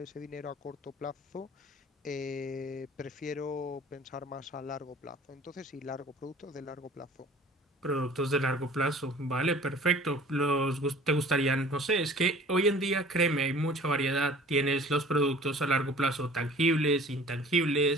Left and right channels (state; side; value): normal; both; correlation 0.47